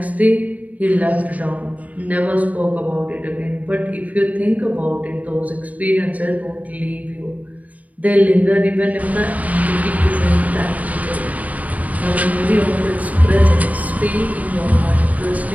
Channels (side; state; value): left; late; 0.072 ms